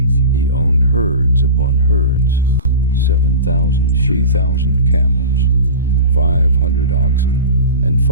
He owned herds upon herds, 7,000 sheep, 3,000 camels, 500 oxen, and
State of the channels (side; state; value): both; inverted; correlation -0.32